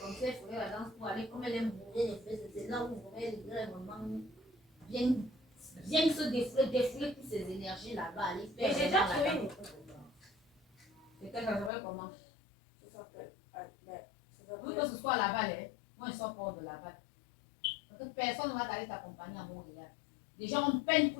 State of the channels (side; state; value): right; drops out; at 11.7 s